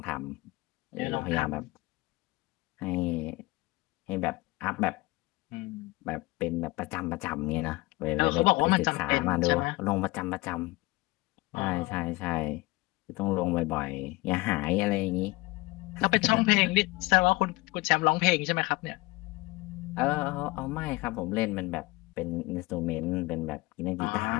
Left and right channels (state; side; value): quieter; right; 22.4 dB